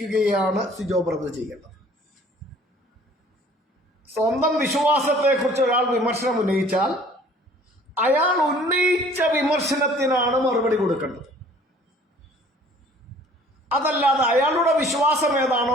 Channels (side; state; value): both; normal; correlation 0.53